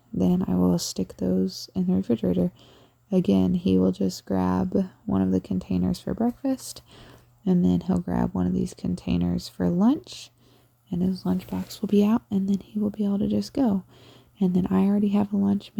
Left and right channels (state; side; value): identical; both; correlation 1.00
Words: then I will stick those in the refrigerator. Again, he will just grab one of the containers for breakfast, and then he'll grab one of these containers for lunch, and his lunchbox will be out, and then he will be able to just go. And then I already have a lunch